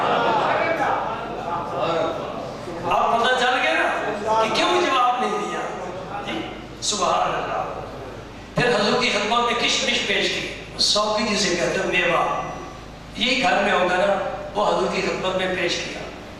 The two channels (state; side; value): identical; both; correlation 1.00